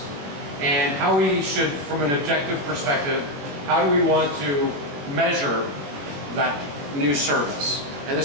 and how we should, from an objective perspective, how do we want to measure that new service? And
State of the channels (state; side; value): late; left; 21 ms